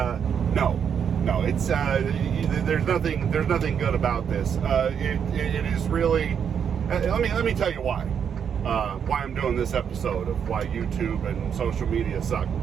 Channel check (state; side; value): quieter; left; 7.7 dB